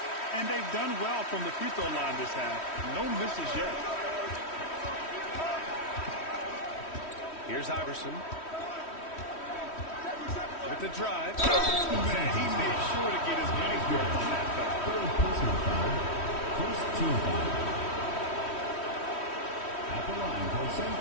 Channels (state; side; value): late; right; 3.1 ms